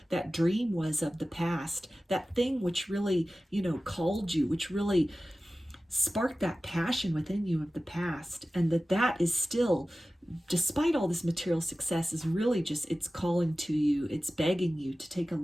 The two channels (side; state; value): both; normal; correlation 0.96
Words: dream was of the past, that thing which really, called you, which really sparked that passion within you of the past. And that is still, despite all this material success, is really it's calling to you, it's begging you to take a